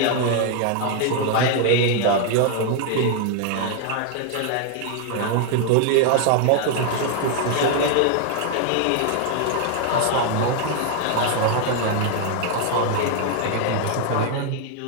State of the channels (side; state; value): both; different; correlation 0.00